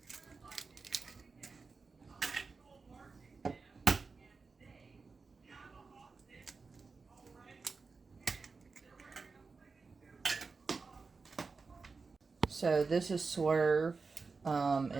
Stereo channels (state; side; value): quieter; left; 4.5 dB